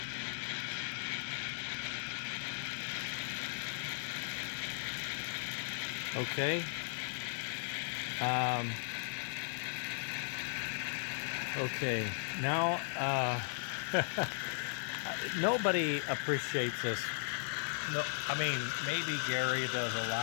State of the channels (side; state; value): right; silent; digital silence